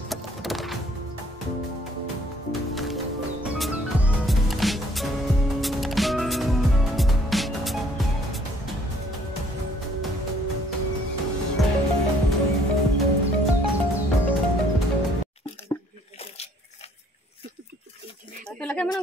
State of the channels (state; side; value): normal; both; correlation 0.61